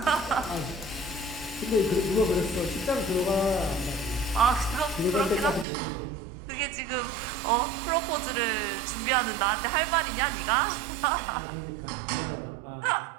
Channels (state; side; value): drops out; left; at 5.7 s